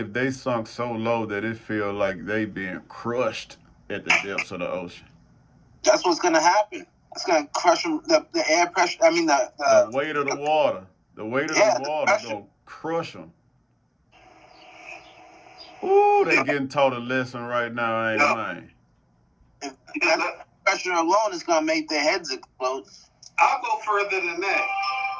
they sunk so low that it feel like they being crushed at the depths of the ocean? That's what's gonna happen. It's gonna crush them. The air pressure. I mean the weight of the water. The weight of the water gonna crush them. Ooh, they getting taught a lesson right now, ain't man? That pressure alone is gonna make their heads explode. I'll go further than that.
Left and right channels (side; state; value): both; identical; correlation 1.00